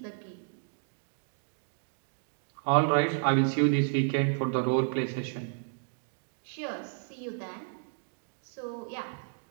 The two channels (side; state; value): left; silent; digital silence